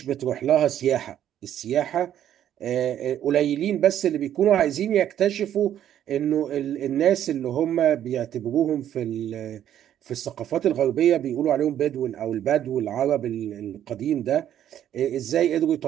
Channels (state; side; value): quieter; left; 10.8 dB